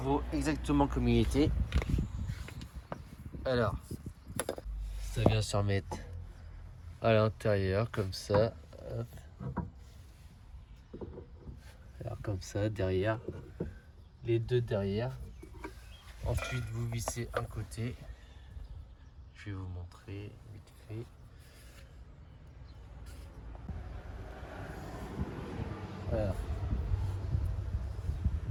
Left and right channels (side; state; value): both; identical; correlation 1.00